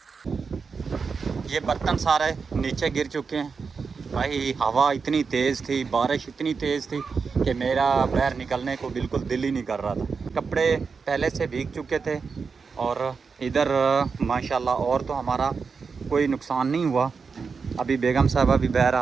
ये बर्तन सारे नीचे गिर चुके हैं। भाई हवा इतनी तेज़ थी, बारिश इतनी तेज़ थी कि मेरा बाहर निकलने को बिल्कुल दिल ही नहीं कर रहा था। कपड़े पहले से भीग चुके थे और इधर माशाल्लाह और तो हमारा कोई नुकसान नहीं हुआ। अभी बेगम साहबा भी बाहर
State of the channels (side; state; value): left; quieter; 5.3 dB